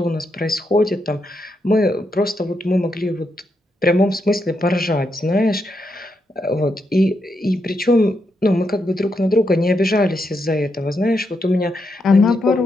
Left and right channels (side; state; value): both; normal; correlation 0.82